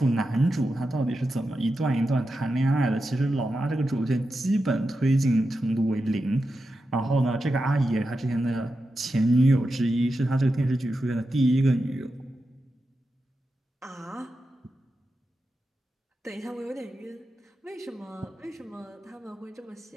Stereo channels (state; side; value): normal; both; correlation 0.90